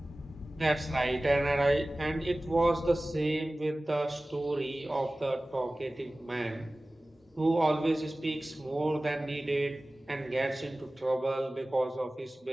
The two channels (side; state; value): both; normal; correlation 0.97